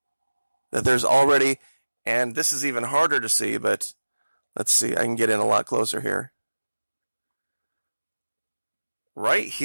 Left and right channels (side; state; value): both; inverted; correlation -1.00